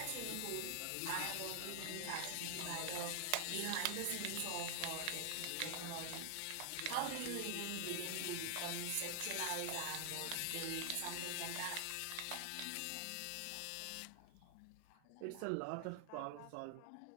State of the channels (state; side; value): different; both; correlation 0.00